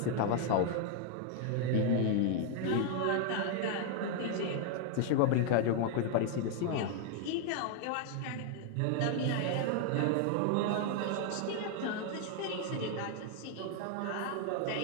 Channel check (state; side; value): different; both; correlation 0.00